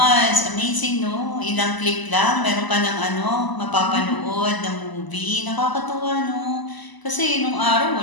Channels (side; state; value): right; late; 1.0 ms